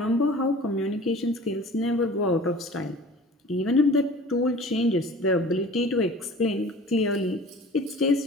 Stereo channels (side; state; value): both; normal; correlation 0.43